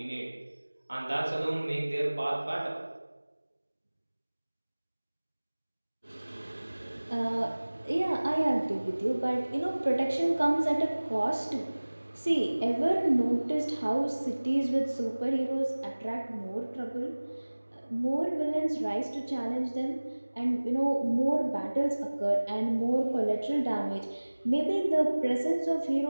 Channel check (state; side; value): inverted; both; correlation -1.00